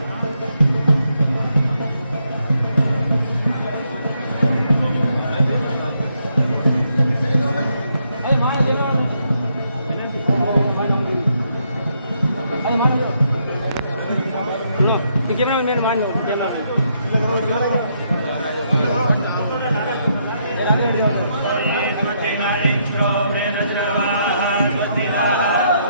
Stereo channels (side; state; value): both; inverted; correlation -0.76